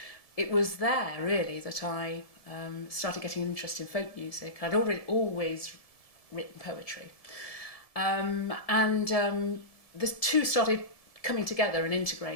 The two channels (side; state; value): right; late; 1.7 ms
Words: it was there really that I started getting an interest in folk music. I'd always written poetry. The two started coming together and